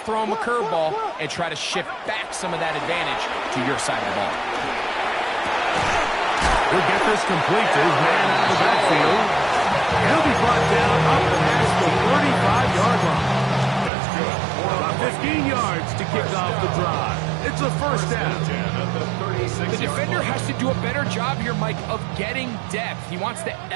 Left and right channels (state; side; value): drops out; left; at 13.9 s